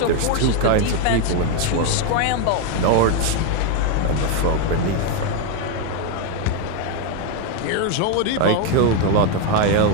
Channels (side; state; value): both; different; correlation 0.01